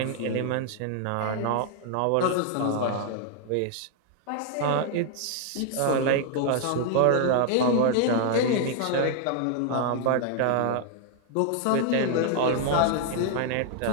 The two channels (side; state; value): both; different; correlation 0.00